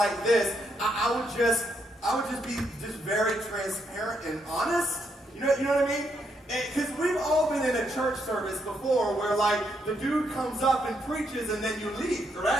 this, I would just be very transparent and honest. You know what I mean? Because we've all been in a church service before where like the dude comes up and preaches and then you leave,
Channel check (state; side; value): normal; both; correlation 0.77